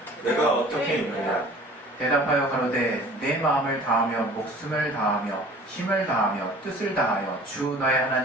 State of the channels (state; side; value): normal; both; correlation 0.47